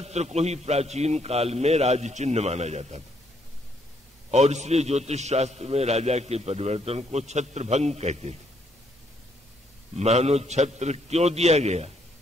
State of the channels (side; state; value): both; normal; correlation 0.71